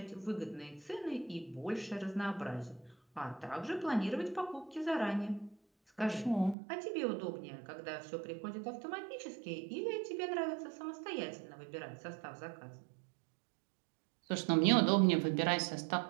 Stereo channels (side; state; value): left; drops out; at 6.6 s